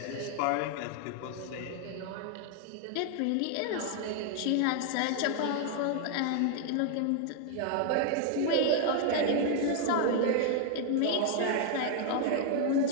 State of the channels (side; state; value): both; different; correlation 0.00